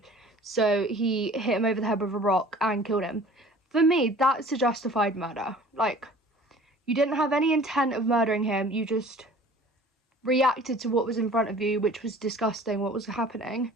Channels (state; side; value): normal; both; correlation 0.47